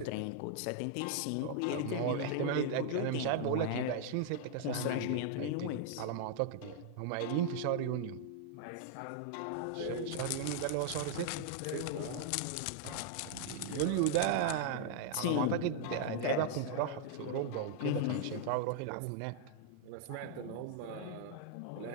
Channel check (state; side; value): different; both; correlation -0.01